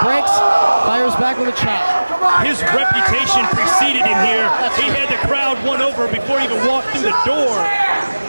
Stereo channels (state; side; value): inverted; both; correlation -1.00